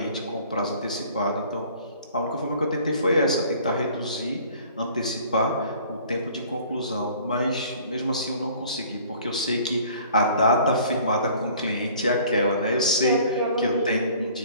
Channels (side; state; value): both; inverted; correlation -0.52